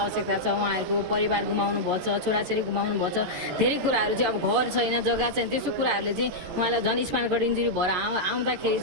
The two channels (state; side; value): late; left; 13 ms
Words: छ। उहाँहरूको परिवार गुमाउनु भएको छ, छोराछोरी गुमाउनु भएको छ, धेरै कुराहरू चाहिँ अब घर छैन, जग्गा छैन, त्यस्तो कुराहरूले चाहिँ उहाँलाई झन् स्पाइनल कर्ड इन्जुरी भएर आउँदाखेरि